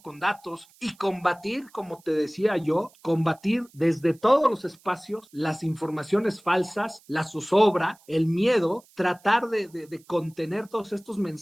Con datos, y combatir, como te decía yo, combatir desde todos los espacios las informaciones falsas, la zozobra, el miedo, tratar de contener todos estos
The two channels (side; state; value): right; noise; hiss, 29 dB below the sound